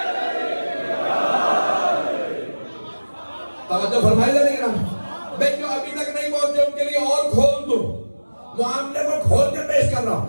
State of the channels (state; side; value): inverted; both; correlation -1.00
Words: توجہ فرمائی جائے گی نا. میں جو ابھی تک نہیں پہنچے ان کے لیے اور کھول دوں, معاملے کو کھول کے پیش کر رہا ہوں.